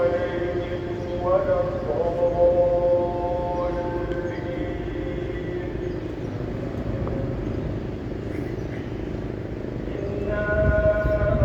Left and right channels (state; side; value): identical; both; correlation 1.00